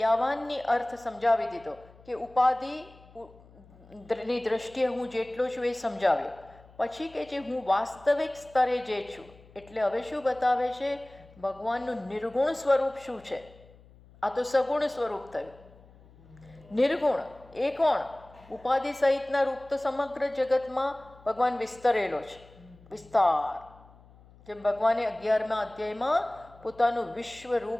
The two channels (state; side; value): noise; left; hum, 24 dB below the sound